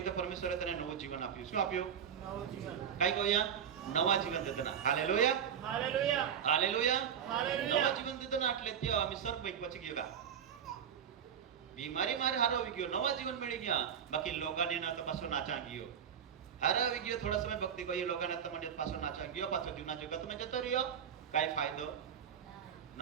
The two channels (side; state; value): left; quieter; 8.2 dB